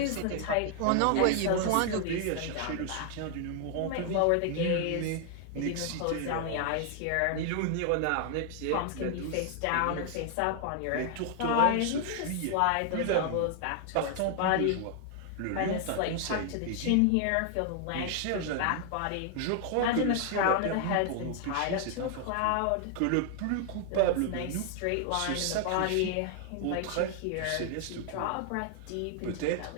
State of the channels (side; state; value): both; different; correlation 0.00